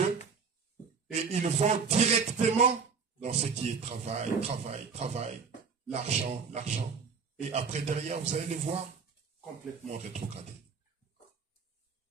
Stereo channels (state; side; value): quieter; left; 5.5 dB